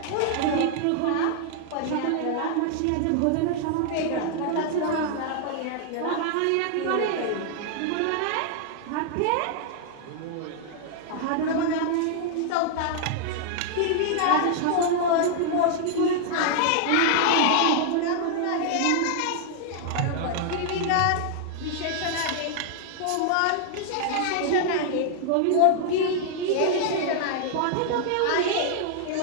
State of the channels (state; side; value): different; both; correlation 0.00